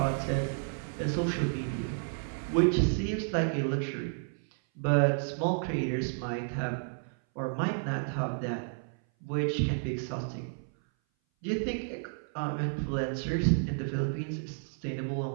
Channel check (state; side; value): silent; left; 57 dB below the other